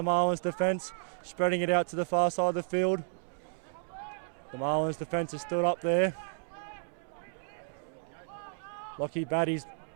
Marlins defence. Spreading it out to the far side of the field. The Marlins defence is still up there. Lockie Batty's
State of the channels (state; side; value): silent; left; 56 dB below the other